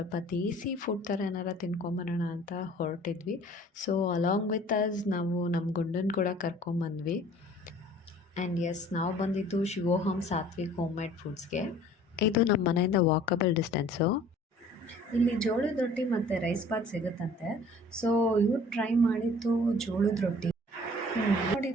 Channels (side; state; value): both; normal; correlation 0.51